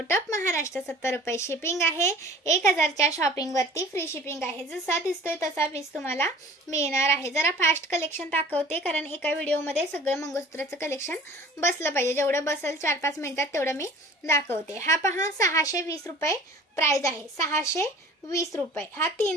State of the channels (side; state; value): both; normal; correlation 0.46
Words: ऑफ महाराष्ट्र 70 रुपये शिपिंग आहे। 1000 च्या शॉपिंग वरती फ्री शिपिंग आहे। जसा दिसतोय तसा पीस तुम्हाला मिळणार आहे। जरा फास्ट कलेक्शन दाखवते कारण एका व्हिडिओ मध्ये सगळं मंगळसूत्राचं कलेक्शन बसलं पाहिजे। जेवढं बसेल 4-5 मिनिटात तेवढं मी दाखवते। हा पहा 620 रुपये प्राइस आहे। 620 रुपये। हा